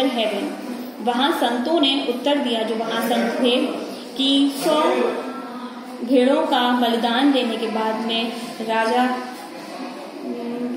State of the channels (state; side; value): identical; both; correlation 1.00